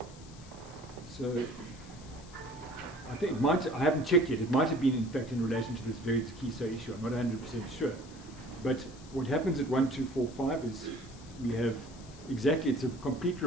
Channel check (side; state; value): left; noise; hiss, 21 dB below the sound